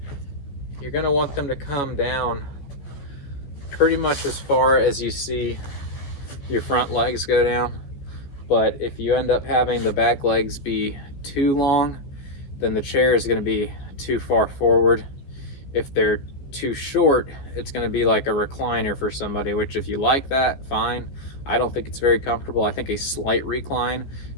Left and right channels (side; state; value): right; late; 15 ms